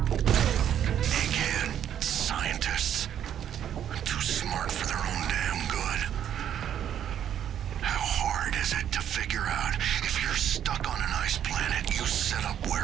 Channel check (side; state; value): left; quieter; 9.9 dB